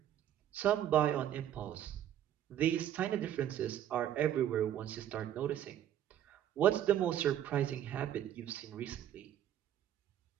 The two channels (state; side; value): quieter; left; 11.0 dB